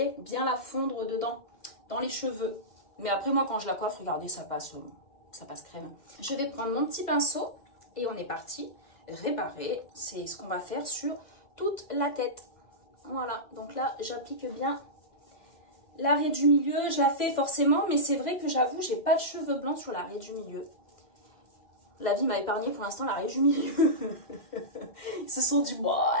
bien la fondre dedans, dans les cheveux. Mais après, moi, quand je la coiffe, regardez, ça passe crème. Je vais prendre mon petit pinceau. Et on est parti réparer, c'est ce qu'on va faire sur toute la tête. Voilà, donc là j'applique bien l'arrêt du milieu. Je la fais forcément, mais c'est vrai que j'avoue, j'ai pas de cheveux blancs sur l'arrêt du milieu. La vie m'a épargné pour l'instant l'arrêt du milieu. Ils se sont dit, bon,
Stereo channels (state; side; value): late; right; 2.0 ms